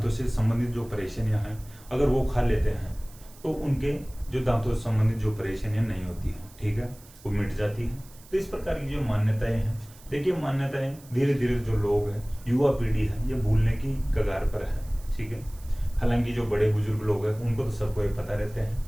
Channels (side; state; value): right; noise; hiss, 23 dB below the sound